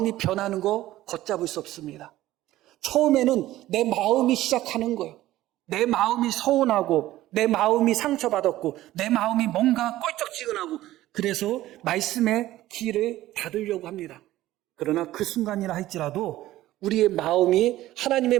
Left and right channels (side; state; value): left; quieter; 15.3 dB